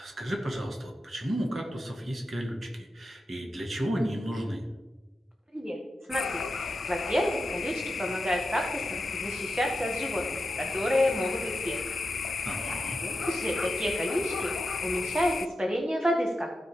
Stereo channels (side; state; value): both; normal; correlation 0.89